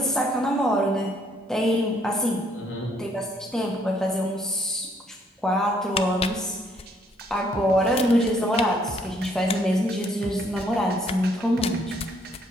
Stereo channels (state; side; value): normal; both; correlation 0.67